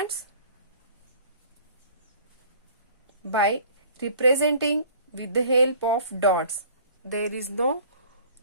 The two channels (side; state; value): both; inverted; correlation -0.50